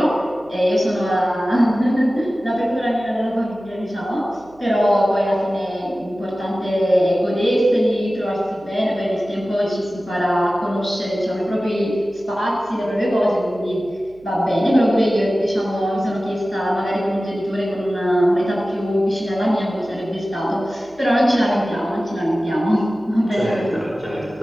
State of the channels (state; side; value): noise; right; hum, 29 dB below the sound